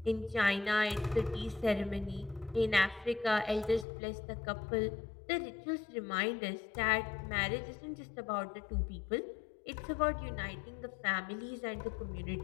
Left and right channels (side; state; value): right; drops out; at 3.9 s